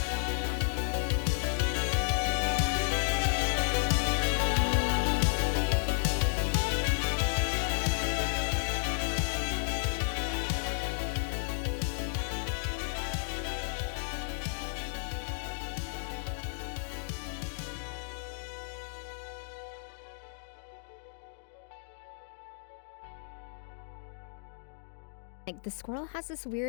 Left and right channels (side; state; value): right; silent; digital silence